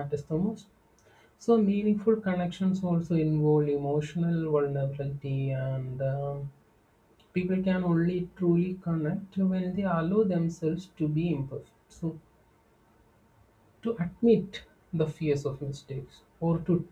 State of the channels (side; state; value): both; identical; correlation 1.00